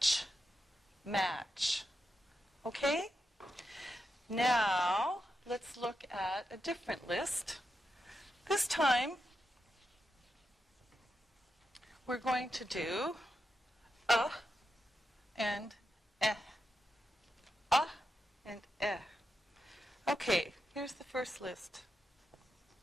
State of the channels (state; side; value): normal; both; correlation 0.87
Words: match. Okay? Now, let's look at a different list. This time, we're going to do and eh. And eh. Okay, here's the first list.